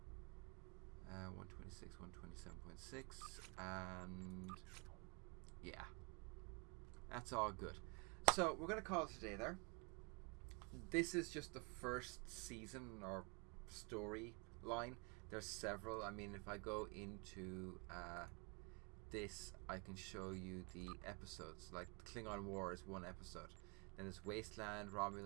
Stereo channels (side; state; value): left; quieter; 32.1 dB